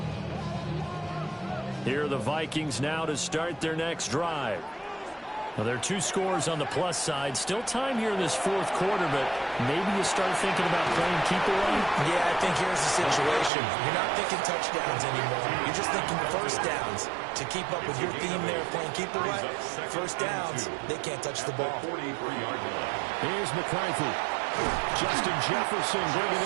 Here are the Vikings now to start their next drive. Well, there are two scores on the plus side. Still time here in this fourth quarter, but maybe you start thinking about playing keep away? Yeah, I think here's the situation. You're not thinking touchdowns anymore. You're just thinking first downs. To keep up with your theme there, playing keep away, first downs, they can't touch the ball. Here's McCarthy. Justin Jefferson bringing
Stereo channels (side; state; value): left; drops out; at 13.5 s